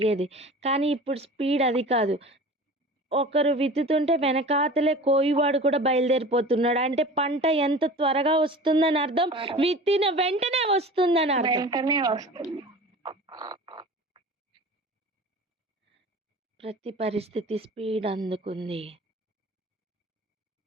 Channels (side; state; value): both; normal; correlation 0.38